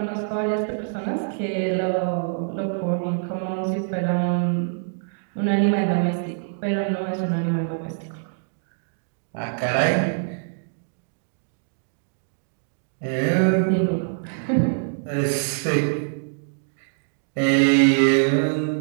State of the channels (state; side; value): silent; left; digital silence